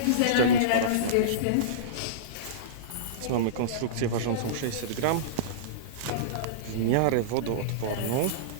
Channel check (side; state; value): both; different; correlation -0.05